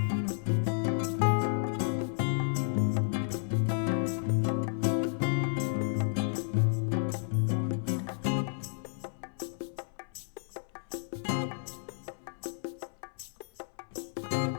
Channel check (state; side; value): silent; right; 56 dB below the other